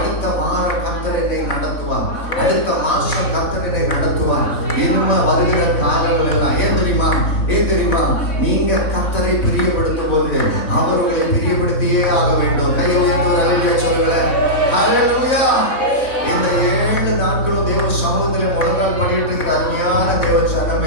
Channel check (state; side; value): late; right; 4.0 ms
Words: வாரம் கர்த்தர் என்னை நடத்துவார், அடுத்த மாசம் கர்த்தர் என்னை நடத்துவார். இனிமே வருகிற காலங்கள் எல்லாம் ஏன் தெரியுமா, நீங்க கர்த்தரை பிரியப்படுத்தும் போது அவர்களை பிரியப்படுத்தியே ஆக வேண்டும். கை உயர்ந்து அல்லேலூயா சொல்லுங்க. அல்லேலூயா. இந்த 7 நாட்களும் தேவ சமூகத்தில் முழங்கால் பண்ணிட்டு இருக்கிற அருமையான தேவ